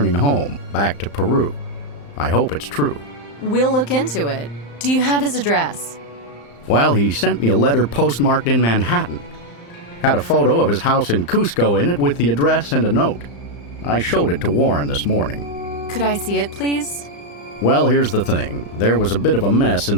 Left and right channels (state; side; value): late; right; 35 ms